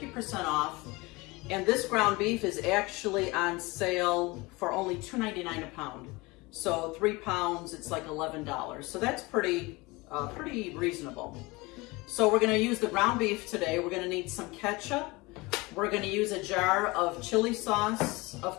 off. And this ground beef is actually on sale for only $2.99 a pound. So 3 pounds, it's like $11. So that's pretty reasonable. So we're gonna use the ground beef today. We're gonna need some ketchup. We're gonna use a jar of chili sauce, of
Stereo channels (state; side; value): quieter; right; 23.6 dB